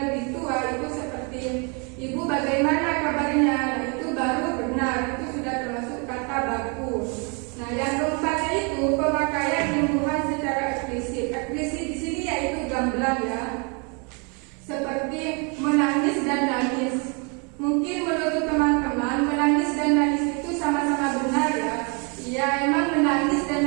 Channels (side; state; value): left; quieter; 34.4 dB